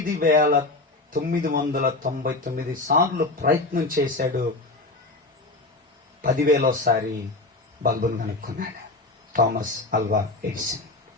సార్లు ప్రయత్నం చేశాడు. 10,000సారి బల్బును కనుక్కున్నాడు థామస్ అల్వా ఎడిసన్.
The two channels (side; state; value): right; quieter; 3.1 dB